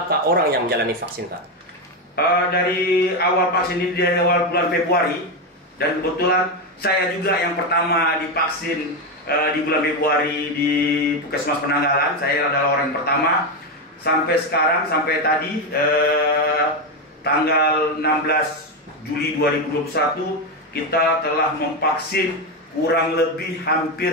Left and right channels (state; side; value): normal; both; correlation 0.11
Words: orang yang menjalani vaksin Pak? Dari awal vaksin ini, dari awal bulan Februari, dan kebetulan saya juga yang pertama divaksin di bulan Februari di Puskesmas Penanggalan. Saya adalah orang yang pertama. Sampai sekarang, sampai tadi tanggal 16 Juli 2021, kita telah memvaksin kurang lebih